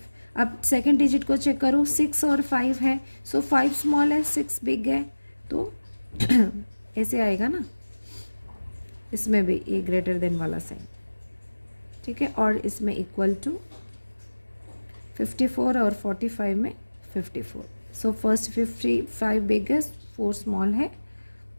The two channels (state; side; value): inverted; both; correlation -1.00